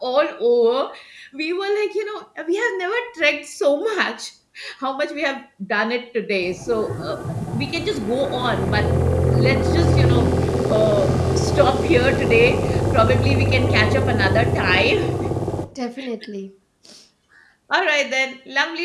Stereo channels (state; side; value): identical; both; correlation 1.00